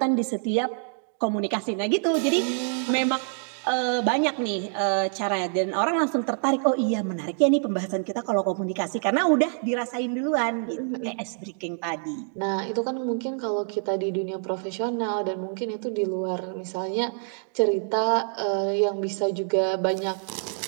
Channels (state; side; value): silent; left; 58 dB below the other